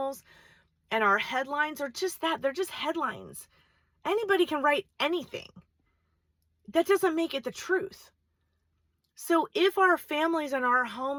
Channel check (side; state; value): both; identical; correlation 1.00